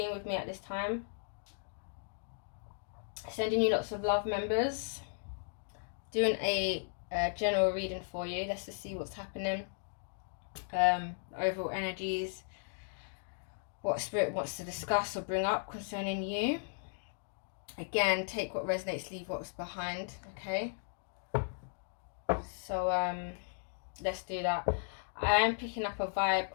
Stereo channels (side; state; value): right; silent; digital silence